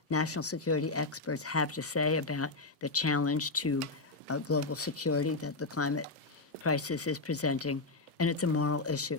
national security experts have to say about the challenge to global security that the climate crisis is presenting. And it's a moral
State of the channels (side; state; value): right; quieter; 3.4 dB